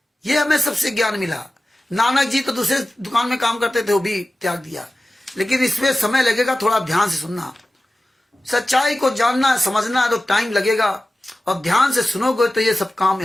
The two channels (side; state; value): both; normal; correlation 0.95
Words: ये हमें सबसे ज्ञान मिला। नानक जी तो दूसरे दुकान में काम करते थे, वो भी त्याग दिया। लेकिन इसमें समय लगेगा, थोड़ा ध्यान से सुनना। सच्चाई को जानना है, समझना है तो टाइम लगेगा, और ध्यान से सुनोगे तो ये सब काम